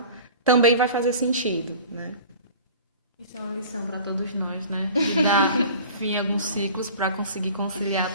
também vai fazer sentido, né? Isso é uma lição para todos nós, né? De dar fim a alguns ciclos para conseguir conciliar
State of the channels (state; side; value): inverted; both; correlation -0.42